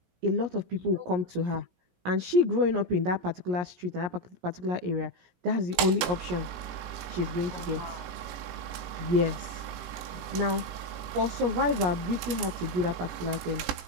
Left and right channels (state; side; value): late; left; 18 ms